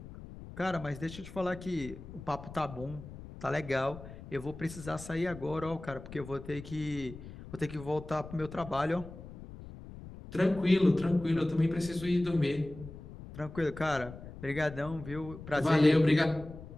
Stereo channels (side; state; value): left; noise; rumble, 14 dB below the sound